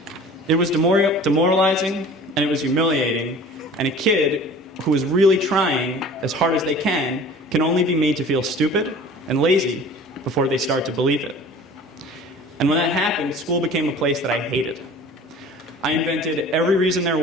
It was demoralizing, and it was humiliating, and a kid who is really trying as hard as they can only be made to feel stupid and lazy before they start to believe it. And when that happened, school became a place that I hated. I invented every reason there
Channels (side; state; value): both; normal; correlation 0.43